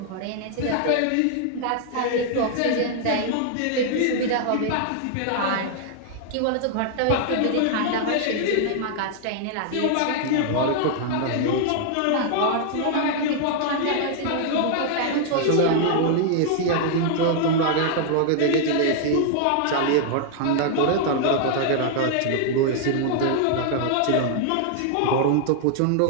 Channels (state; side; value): different; both; correlation 0.00